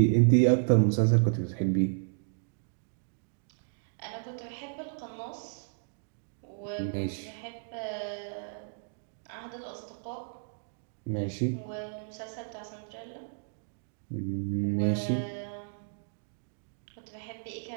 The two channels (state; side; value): silent; left; digital silence